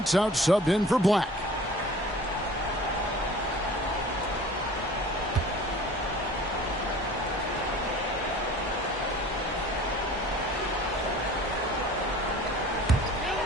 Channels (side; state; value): both; normal; correlation 0.45